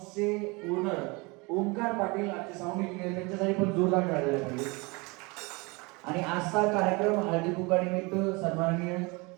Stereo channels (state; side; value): quieter; left; 26.8 dB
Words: ओनर ओमकार पाटील आमचे साऊंड इंजिनियर त्यांच्यासाठी पण जोरदार टाळ्या झाल्या पाहिजे. आणि आजचा कार्यक्रम हळदी कुंकानिमित्त सन्माननीय